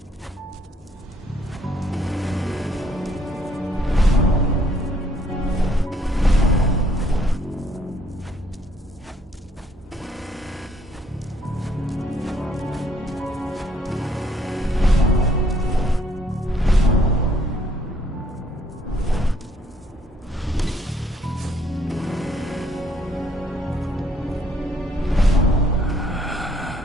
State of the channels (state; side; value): normal; both; correlation 0.66